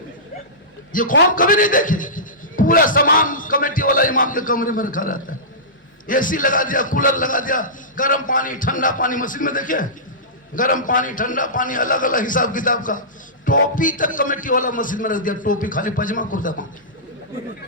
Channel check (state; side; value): normal; both; correlation -0.20